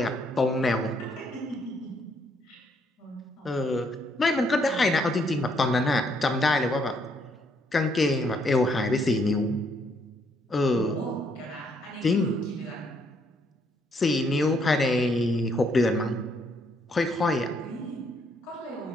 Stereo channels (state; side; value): normal; both; correlation 0.71